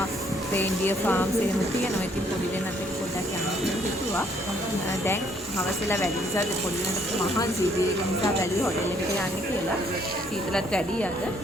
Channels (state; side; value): normal; both; correlation 0.67